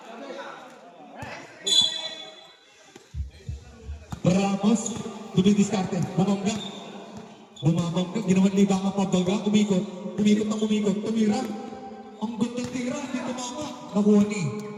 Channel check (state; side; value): identical; both; correlation 1.00